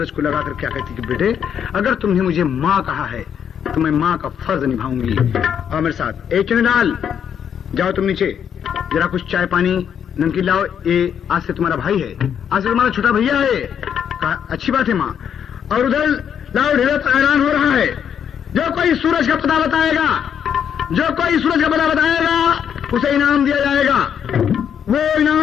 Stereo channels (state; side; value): quieter; right; 8.4 dB